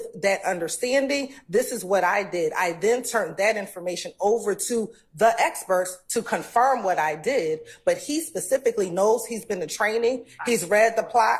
that understanding, this is what I did. I then turned that information over to the experts to confirm what I did, but he specifically knows he's been to training, he's read the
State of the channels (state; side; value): identical; both; correlation 1.00